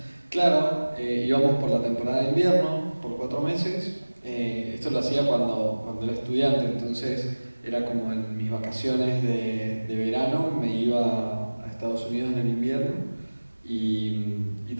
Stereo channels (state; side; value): inverted; both; correlation -1.00